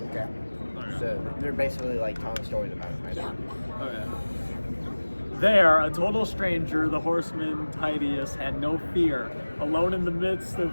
Okay. So they're basically like telling stories about him right now. Okay. There, a total stranger, the horseman Titius had no fear, alone in the midst of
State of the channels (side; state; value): both; inverted; correlation -1.00